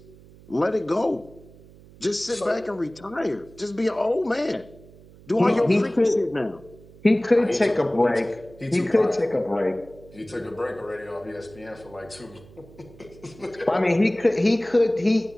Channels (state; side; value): noise; right; hum, 23 dB below the sound